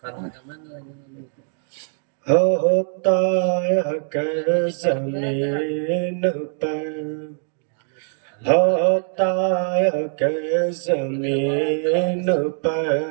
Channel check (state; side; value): silent; left; 64 dB below the other